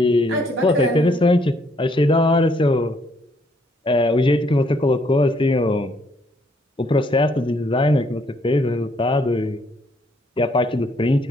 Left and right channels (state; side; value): normal; both; correlation 0.69